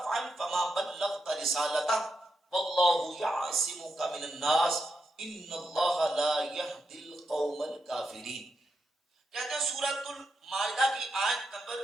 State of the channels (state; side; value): normal; both; correlation 0.84